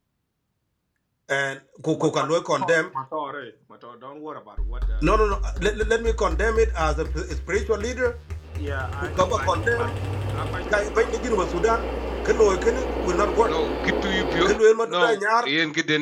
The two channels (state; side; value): identical; both; correlation 1.00